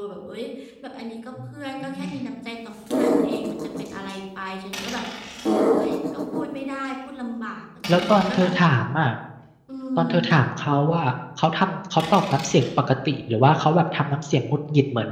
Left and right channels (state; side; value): identical; both; correlation 1.00